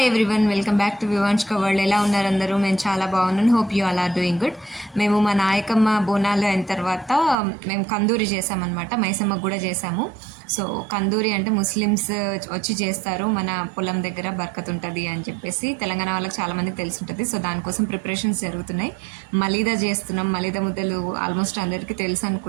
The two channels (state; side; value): drops out; left; at 7.4 s